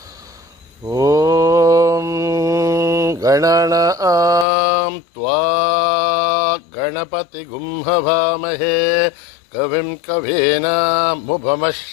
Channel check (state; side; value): drops out; right; at 4.5 s